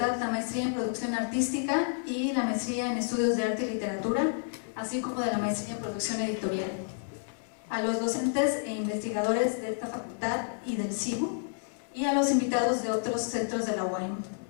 la maestría en Producción Artística y la maestría en Estudios de Arte y Literatura, así como de la maestría en Producción Editorial. A los docentes e investigadores de esta facultad y del CIBU, y a los invitados de otros centros de la UAM,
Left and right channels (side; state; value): right; silent; digital silence